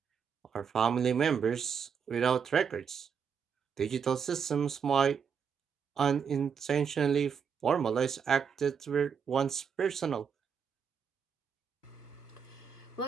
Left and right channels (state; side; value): quieter; left; 6.9 dB